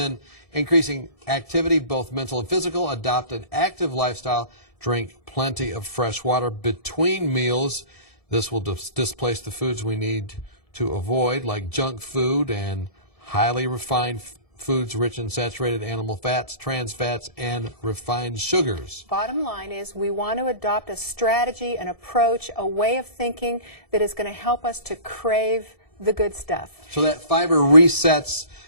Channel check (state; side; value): late; right; 1.7 ms